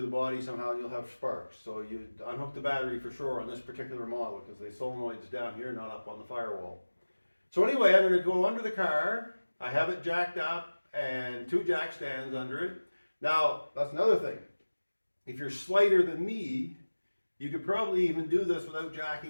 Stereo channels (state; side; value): inverted; both; correlation -1.00